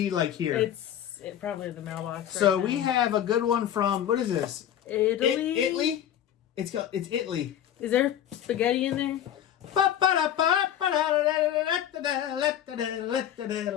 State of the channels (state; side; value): quieter; right; 10.5 dB